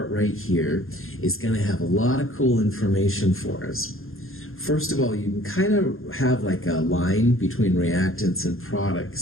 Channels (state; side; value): late; right; 0.61 ms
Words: right here is gonna have a lot of cool information for us. First of all, you can kind of have like a line between reactants and